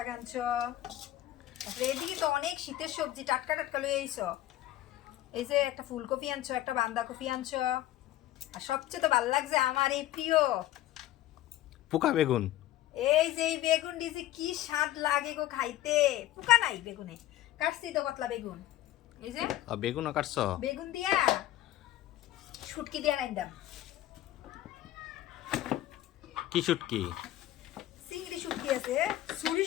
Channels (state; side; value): quieter; right; 14.2 dB